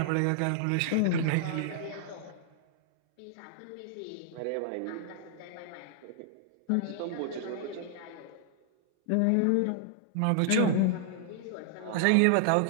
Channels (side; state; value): both; different; correlation -0.01